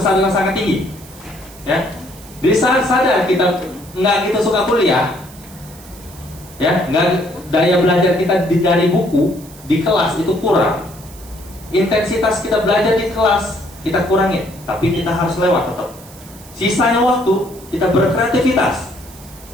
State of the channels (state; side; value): noise; right; hiss, 21 dB below the sound